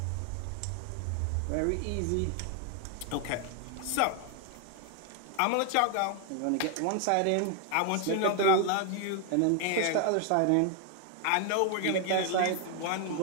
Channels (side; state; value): both; different; correlation 0.01